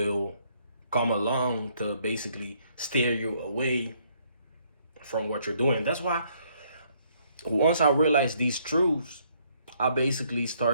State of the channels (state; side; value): inverted; both; correlation -0.68